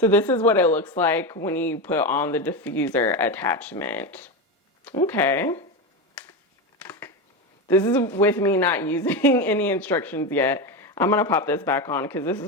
this is what it looks like when you put on the diffuser attachment. Okay. This is with me not using any instructions yet. I'm gonna pop this back on because this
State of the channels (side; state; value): both; normal; correlation 0.17